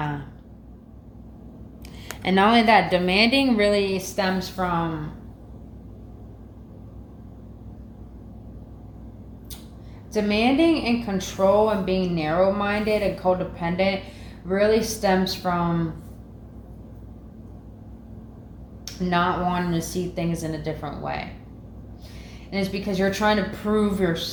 And not only that, demanding really stems from demanding and control, and being narrow-minded and codependent really stems from not wanting to see things in a different way. And it's because you're trying to prove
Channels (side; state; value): both; identical; correlation 1.00